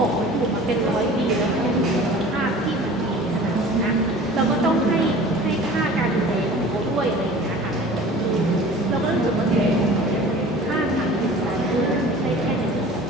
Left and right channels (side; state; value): both; normal; correlation 0.43